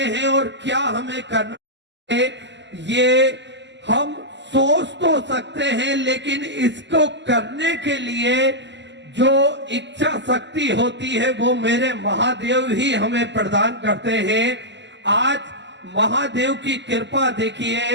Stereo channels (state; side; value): late; left; 0.52 ms